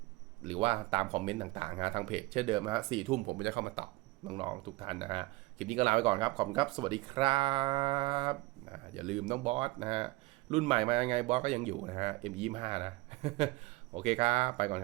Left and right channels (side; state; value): left; quieter; 21.2 dB